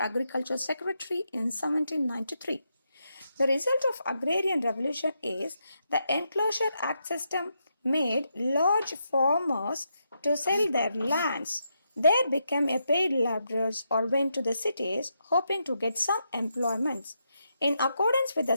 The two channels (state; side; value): inverted; both; correlation -0.82